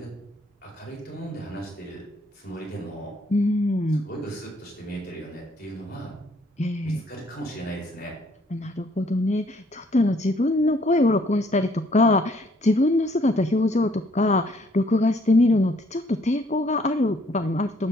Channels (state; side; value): normal; both; correlation 0.64